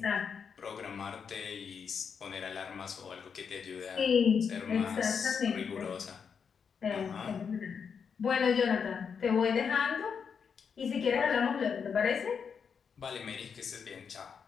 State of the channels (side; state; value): right; quieter; 6.5 dB